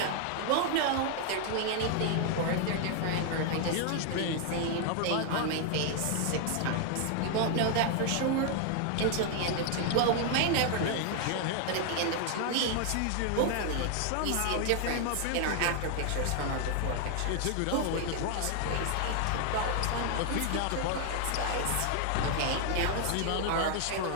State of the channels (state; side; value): different; both; correlation 0.00